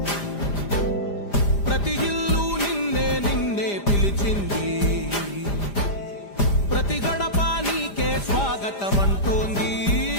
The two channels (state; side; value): late; right; 5.0 ms